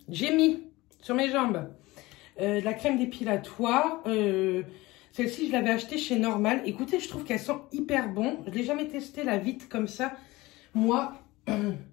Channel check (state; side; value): quieter; right; 20.4 dB